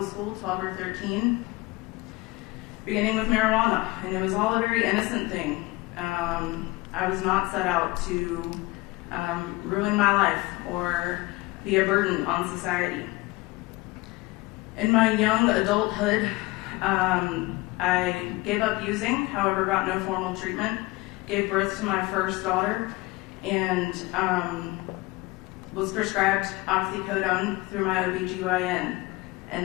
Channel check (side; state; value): right; quieter; 21.7 dB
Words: school, 12 or 13, beginning with marijuana, and it was all a very innocent thing. I was not set out to ruin my life or be a burden on society. In my young adulthood, I gave up using, however got no formal treatment, gave birth to my first daughter, and was prescribed oxycodone through my OBGYN.